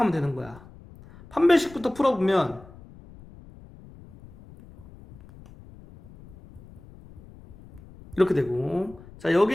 되는 거야. 판별식부터 풀어보면 이렇게 되고, 자, 여기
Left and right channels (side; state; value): left; noise; rumble, 21 dB below the sound